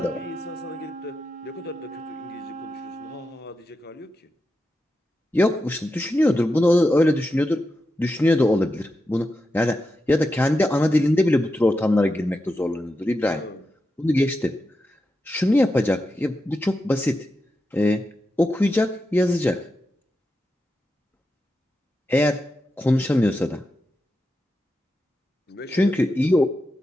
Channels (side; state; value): both; normal; correlation 0.89